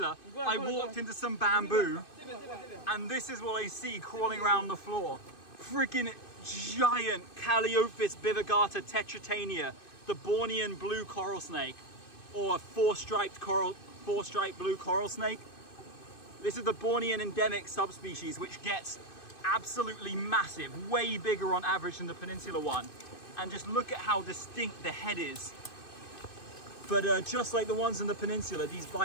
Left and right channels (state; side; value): late; right; 2.5 ms